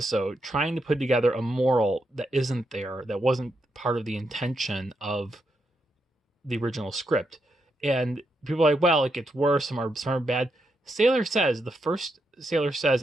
trying to put together a moral that isn't there, that wasn't part of the intention of the original script. And people are like, well, it gets worse, some are bad. Sailor Says, the first Sailor Says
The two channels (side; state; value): both; normal; correlation 0.82